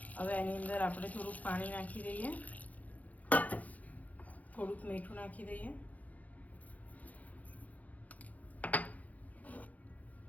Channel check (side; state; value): right; late; 0.076 ms